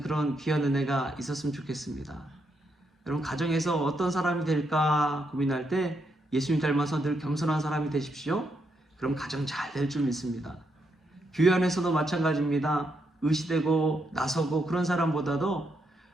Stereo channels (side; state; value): both; normal; correlation 0.79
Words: 그런 귀한 은혜가 있었으면 좋겠습니다. 여러분, 가정에서 어떤 사람이 될까 고민할 때 예수님 닮아서 늘 겸손한 사람이 되십시오. 그럼 가정 잘 될 줄 믿습니다. 교회 안에서도 마찬가지입니다. 의시되고 나서고 그런 사람보다도